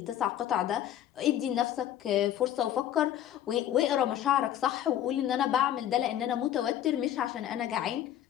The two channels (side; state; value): right; quieter; 11.4 dB